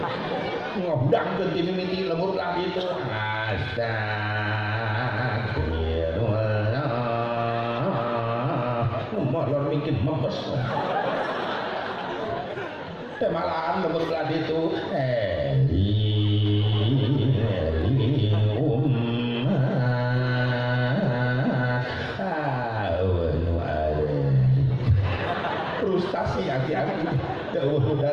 Ngobdang teu ti mimiti lembur lah gitu. Astagfirullah. Molor mikir mempes. Teh malahan lembur lah itu. Frustasi aki-aki jauh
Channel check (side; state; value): both; identical; correlation 1.00